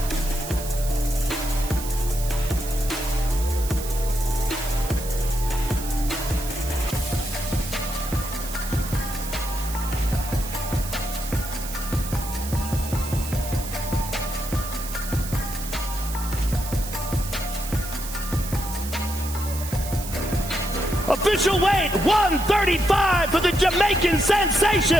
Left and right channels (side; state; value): right; noise; hiss, 10 dB below the sound